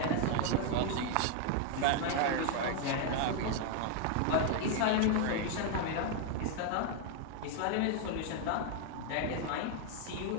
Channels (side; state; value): both; different; correlation 0.00